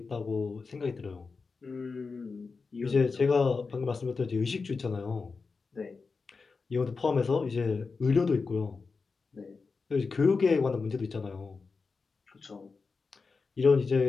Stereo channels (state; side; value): quieter; right; 4.6 dB